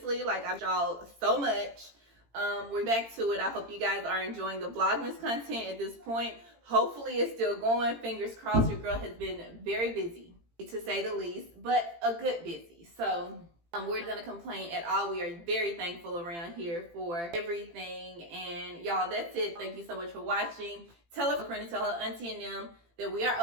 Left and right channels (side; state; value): left; late; 18 ms